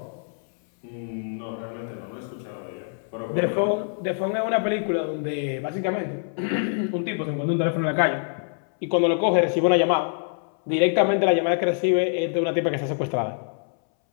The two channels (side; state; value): right; silent; 62 dB below the other